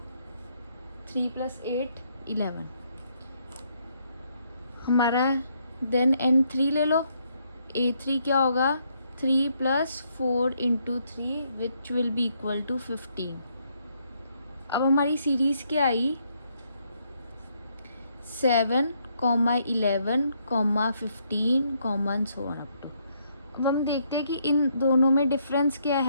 3 + 8 11, हमारा देन n3 ले लो, a3 क्या होगा 3 + 4 into 3 which will be equal to 15। अब हमारी सीरीज़ क्या आई 7, 11, 15, सो ऑन अप टू। अब हम देखते हैं कि इन दोनों में डिफरेंस क्या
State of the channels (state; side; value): inverted; both; correlation -0.73